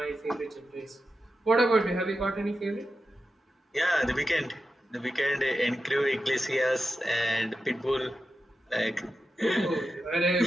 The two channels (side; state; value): both; normal; correlation 0.90